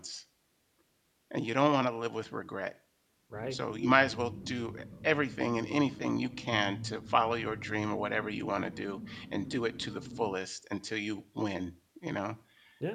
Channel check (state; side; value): identical; both; correlation 1.00